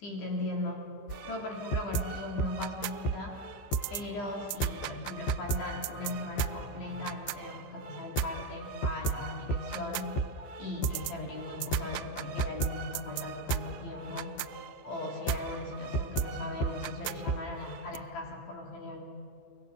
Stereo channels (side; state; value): right; late; 14 ms